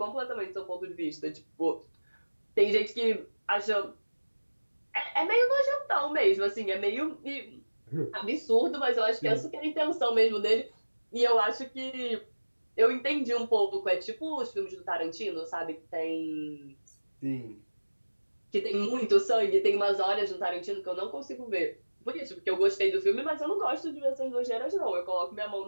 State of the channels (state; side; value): inverted; both; correlation -1.00